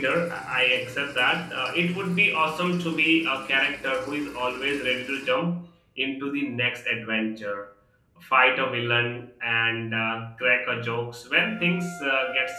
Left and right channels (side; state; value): both; identical; correlation 1.00